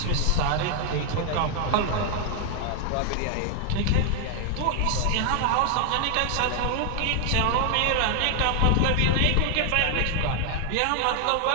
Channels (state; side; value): different; both; correlation 0.00